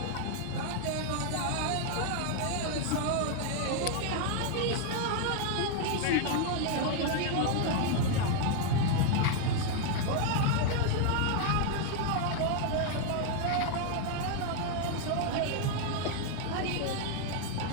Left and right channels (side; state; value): both; different; correlation 0.00